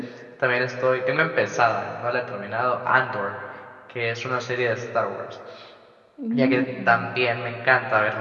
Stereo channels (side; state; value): both; identical; correlation 1.00